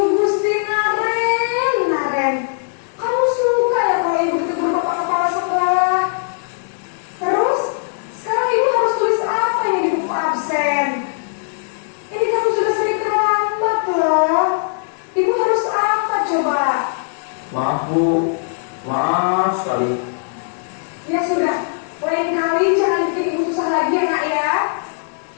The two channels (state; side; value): silent; right; digital silence